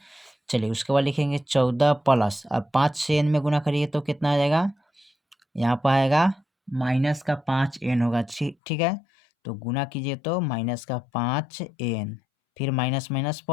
चलिए उसके बाद लिखेंगे 14 प्लस, अब 5 से एन में गुना करिए तो कितना आ जाएगा, यहाँ पर आएगा माइनस का 5 एन होगा, ठीक है। तो गुना कीजिए तो माइनस का 5 एन, फिर माइनस माइनस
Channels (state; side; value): drops out; right; at 8.6 s